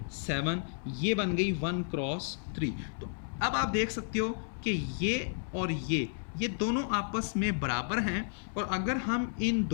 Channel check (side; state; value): right; silent; 56 dB below the other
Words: 7, ये बन गई 1x3। तो अब आप देख सकते हो कि ये और ये दोनों आपस में बराबर हैं, और अगर हम इन